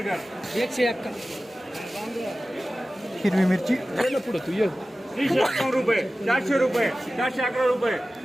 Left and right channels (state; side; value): normal; both; correlation 0.96